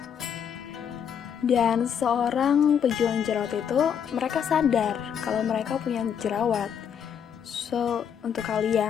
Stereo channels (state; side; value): quieter; right; 8.1 dB